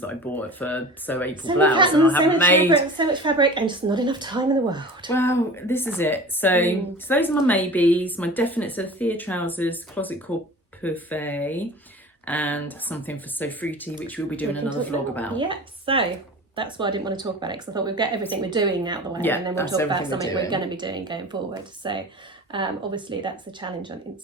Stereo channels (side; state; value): both; normal; correlation 0.37